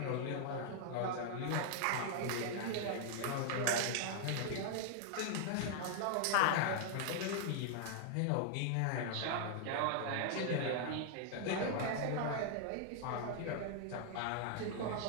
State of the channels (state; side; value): different; both; correlation 0.00